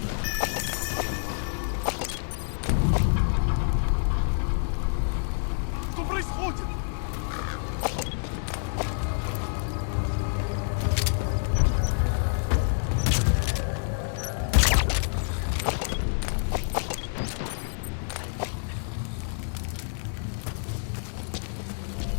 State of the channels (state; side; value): silent; right; digital silence